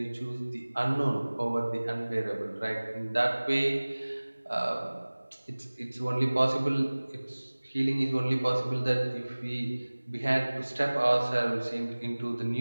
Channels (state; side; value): inverted; both; correlation -1.00